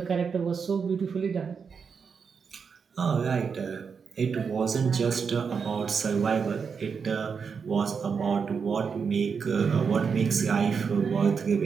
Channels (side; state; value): left; quieter; 6.0 dB